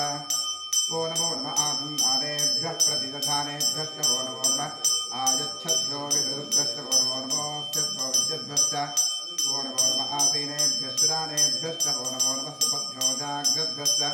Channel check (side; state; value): both; identical; correlation 1.00